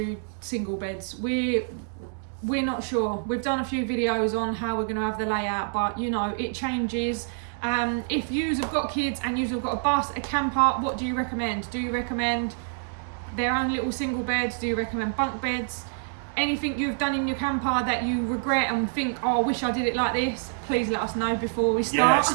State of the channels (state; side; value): silent; left; 60 dB below the other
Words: single beds? We're not sure. We've done a few videos on how we're going to have the layout, but you know, it changes. If yous have got kids and yous have got a bus, a camper, what do you recommend? Do you recommend their own little single beds? Do you recommend bunk beds? Anything you've done in your camper that you regret and think, oh, I wish I did it like this, please let us know before we start.